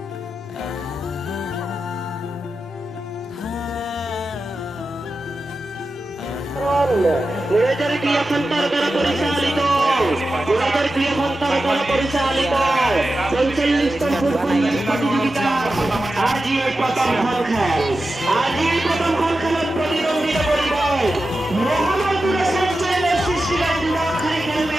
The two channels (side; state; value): both; normal; correlation 0.92